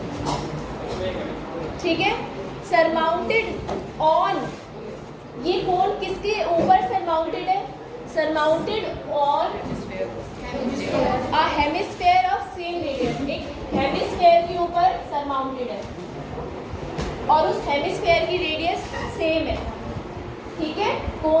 ठीक है. Surmounted on, ये कोन किसके ऊपर सरमाउंटेड है? Surmounted on a hemisphere of same radius. एक हेमिस्फेयर के ऊपर सरमाउंटेड है और उस हेमिस्फेयर की रेडियस सेम है. ठीक है,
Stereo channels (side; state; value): both; identical; correlation 1.00